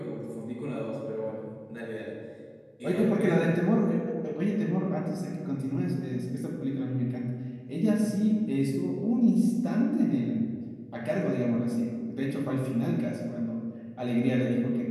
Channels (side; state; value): both; identical; correlation 1.00